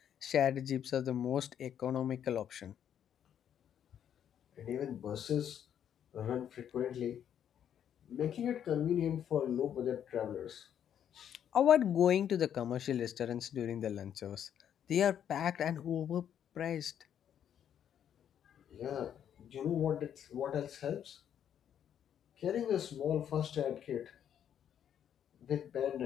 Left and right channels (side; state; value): right; quieter; 9.4 dB